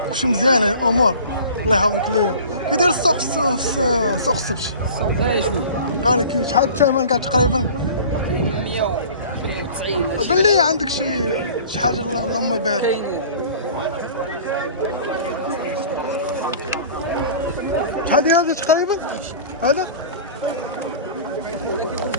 كلشي مزيان الامور؟ الله يحفظك ليا. كي داير السوق السوق السبت؟ السوق غالي شويه قال لك شحال الثمن كاع تقريبا؟ 190 بان لي عندك شي حاجه اللهم بارك. كاين شحال ديال هذا تقريبا؟ هذا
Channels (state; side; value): inverted; both; correlation -0.42